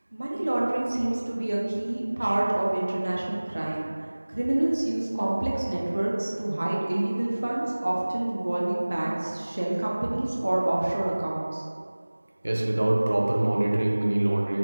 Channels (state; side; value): inverted; both; correlation -1.00